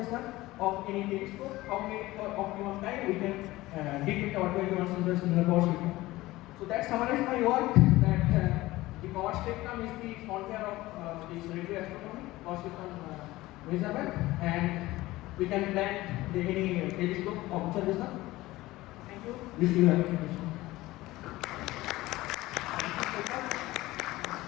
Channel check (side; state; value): right; quieter; 18.3 dB